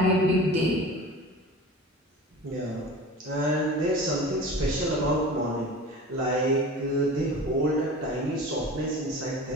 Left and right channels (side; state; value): both; normal; correlation 0.36